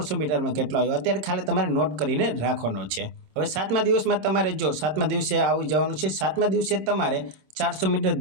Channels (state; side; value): late; left; 26 ms